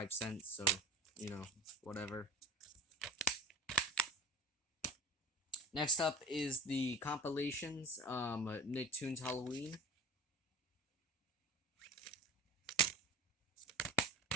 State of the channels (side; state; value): both; normal; correlation 0.37